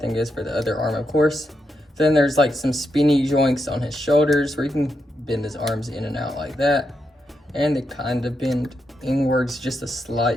goes for the other arm, of course. Then there's like some spinny joints on his shoulders where you can bend his arms in and out like that. And they kind of bend inwards just a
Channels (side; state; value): both; normal; correlation 0.84